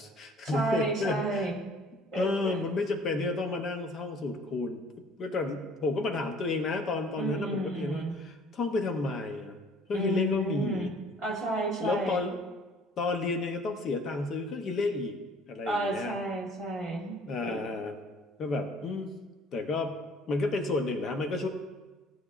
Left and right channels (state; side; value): normal; both; correlation 0.54